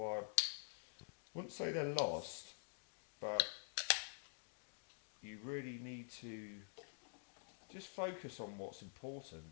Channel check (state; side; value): silent; right; digital silence